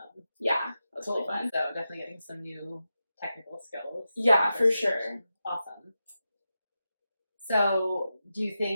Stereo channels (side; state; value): both; inverted; correlation -0.90